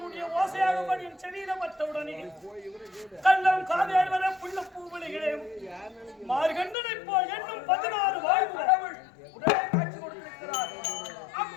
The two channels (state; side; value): drops out; right; at 6.8 s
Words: ஓசையாக என் செவியில பட்டவுடனே கள்ளம் காதேர்வர புள்ள பூவலிகளே மார்கண்டனை போல் என்னும் 16 வாழ்வு கடவுள் உடனே காட்சி கொடுத்திருக்கிறார்.